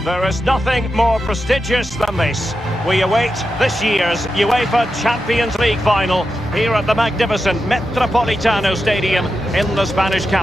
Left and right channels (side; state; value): both; normal; correlation 0.89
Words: There is nothing more prestigious than this. We await this year's UEFA Champions League final here at the magnificent Metropolitano Stadium in the Spanish